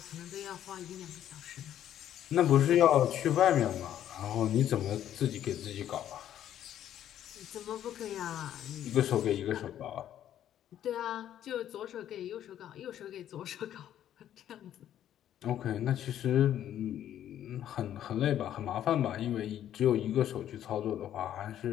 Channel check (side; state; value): right; quieter; 11.1 dB